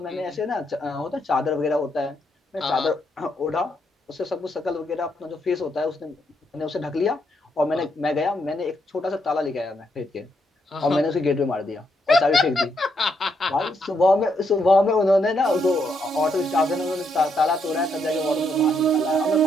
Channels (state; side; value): normal; both; correlation 0.77